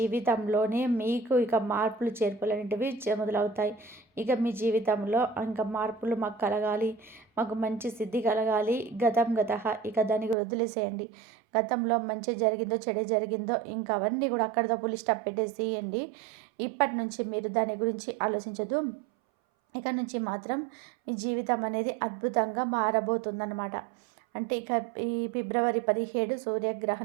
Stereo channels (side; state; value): left; drops out; at 10.4 s